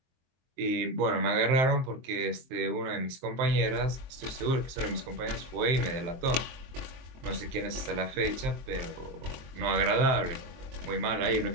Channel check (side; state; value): left; late; 23 ms